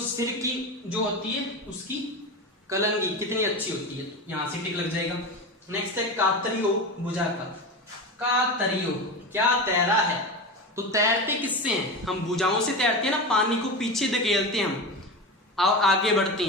की जो होती है उसकी कलंगी कितनी अच्छी होती है, यहां से टिक लग जाएगा। नेक्स्ट है कातरियो भुजा का। कातरियो क्या तैरा है, तो तैरते किससे हैं, हम भुजाओं से तैरते हैं ना, पानी को पीछे धकेलते हैं हम और आगे बढ़ते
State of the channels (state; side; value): normal; both; correlation 0.23